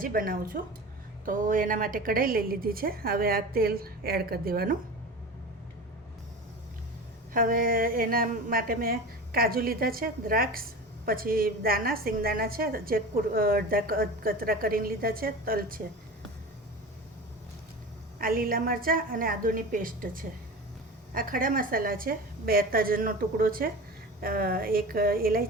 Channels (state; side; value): normal; both; correlation 0.32